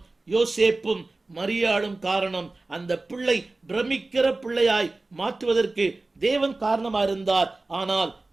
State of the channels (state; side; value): quieter; left; 3.2 dB